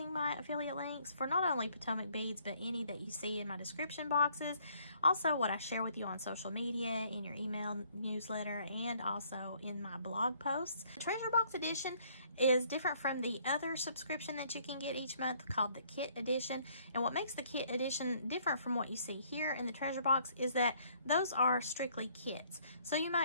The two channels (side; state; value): both; inverted; correlation -0.64